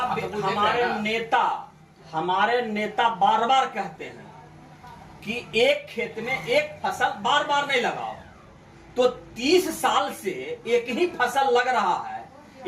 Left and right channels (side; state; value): both; identical; correlation 1.00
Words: हमारे नेता बार बार कहते हैं कि एक खेत में एक फसल बार बार नहीं लगाओ। तो 30 साल से एक ही फसल लग रहा है,